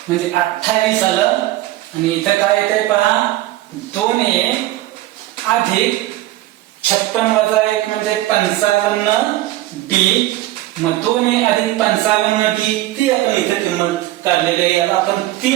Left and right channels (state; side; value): quieter; left; 15.9 dB